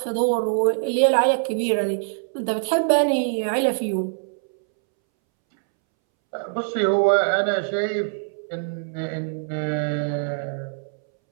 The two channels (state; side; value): silent; left; 63 dB below the other